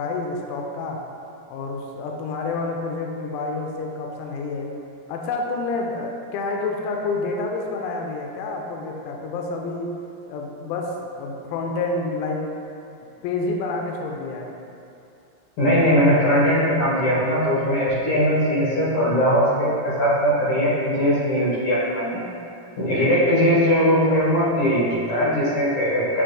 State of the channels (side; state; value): right; late; 17 ms